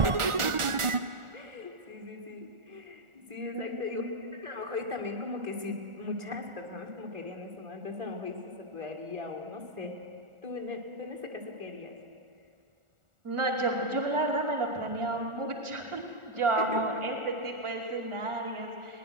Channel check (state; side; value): late; left; 1.4 ms